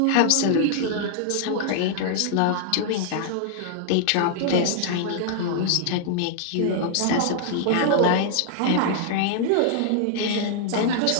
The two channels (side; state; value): both; different; correlation -0.01